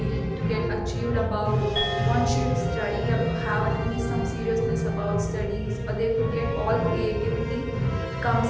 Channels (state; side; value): identical; both; correlation 1.00